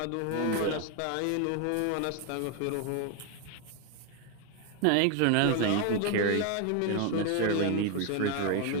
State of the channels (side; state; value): both; different; correlation 0.01